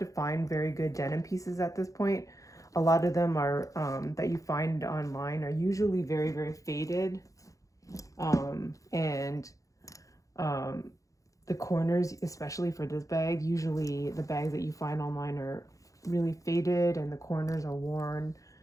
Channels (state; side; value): late; right; 0.16 ms